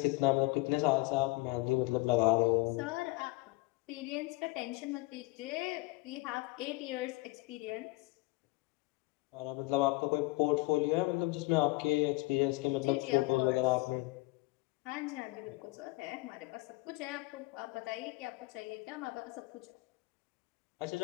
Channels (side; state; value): right; quieter; 22.8 dB